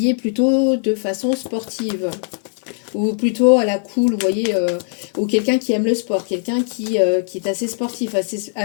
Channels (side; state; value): right; silent; 60 dB below the other